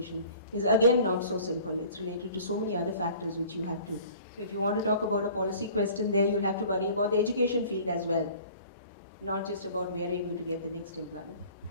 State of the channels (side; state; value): both; inverted; correlation -0.48